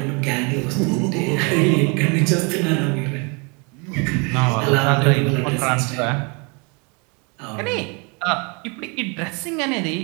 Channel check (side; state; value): left; quieter; 32.2 dB